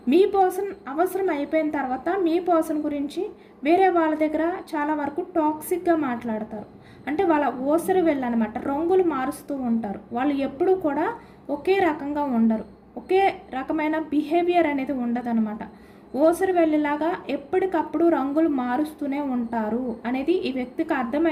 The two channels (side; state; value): both; identical; correlation 1.00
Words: మీ పర్సన్ అవసరం అయిపోయిన తర్వాత మీ పర్సన్ గురించి వేరే వాళ్ళ దగ్గర చాలా వరకు టాక్సిక్గా మాట్లాడతారు. అంటే వాళ్ళ ఓసరి వెళ్ళనమాట, రంగులు మారుస్తూ ఉంటారు. వాళ్ళు ఎప్పుడూ కూడా ఒకే రకంగా ఉండరు. ఒకే రకమైన బిహేవియర్ అనేది ఉండదన్నమాట. ఓసరి వెళ్ళేలాగా ఎప్పటికప్పుడు రంగులు మారుస్తూనే ఉంటారు అనేది ఈ వ్యక్తికి